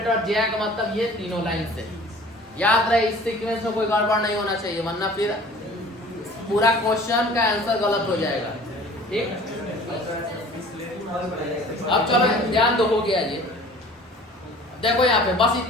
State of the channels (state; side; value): normal; both; correlation 0.47